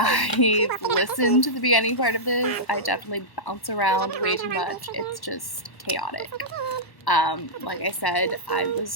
listened to the beginning part of this. I definitely bounce around way too much. It's just chaotic. Like I said, I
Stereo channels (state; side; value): late; right; 1.1 ms